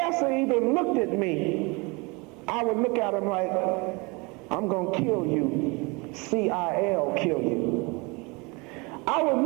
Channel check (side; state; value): left; quieter; 27.6 dB